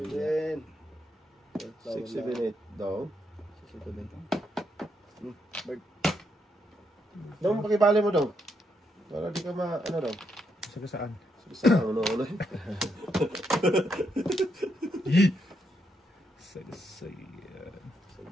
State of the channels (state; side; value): normal; both; correlation 0.78